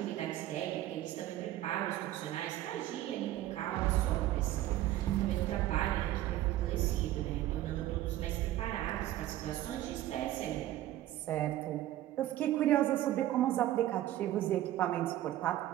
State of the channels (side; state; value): left; quieter; 14.2 dB